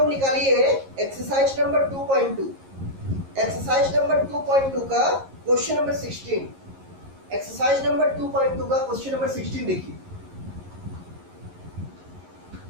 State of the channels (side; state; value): left; late; 11 ms